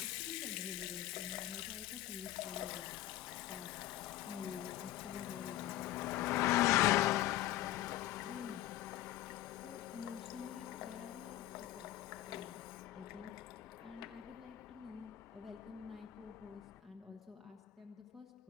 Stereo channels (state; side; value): quieter; right; 14.1 dB